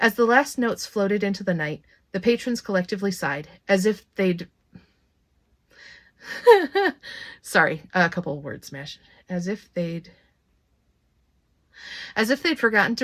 the last notes floated into the night, the patrons collectively sighed, as if they'd... Sorry, a couple of words smashed. As if they'd forgotten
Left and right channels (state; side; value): identical; both; correlation 1.00